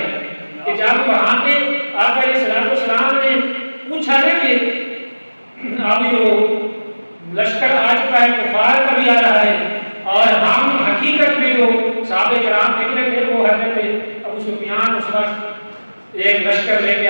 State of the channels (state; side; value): inverted; both; correlation -1.00